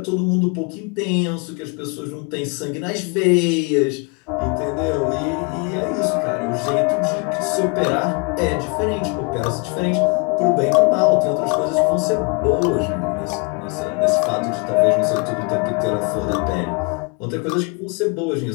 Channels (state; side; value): quieter; right; 32.8 dB